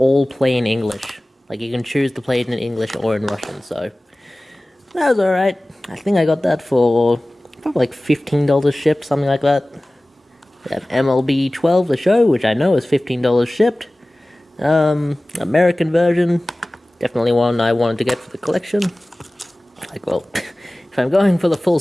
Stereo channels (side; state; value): both; normal; correlation 0.98